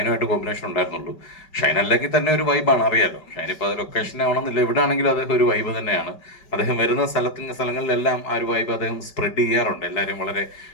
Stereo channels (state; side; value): late; right; 5.2 ms